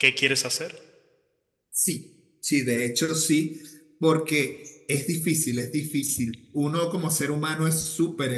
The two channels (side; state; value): both; identical; correlation 1.00